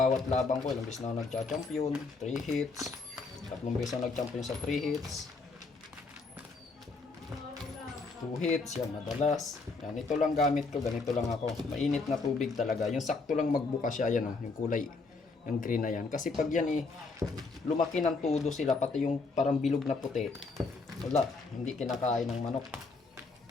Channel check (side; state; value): right; quieter; 4.0 dB